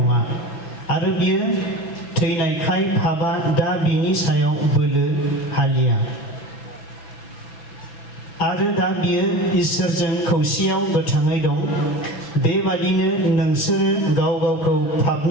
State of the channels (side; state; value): right; late; 6.0 ms